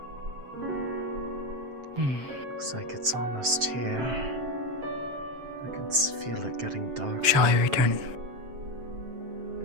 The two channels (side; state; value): left; late; 7.7 ms